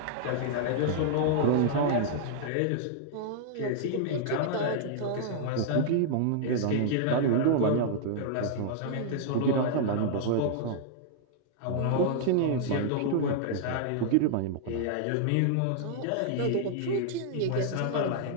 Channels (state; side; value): different; both; correlation -0.01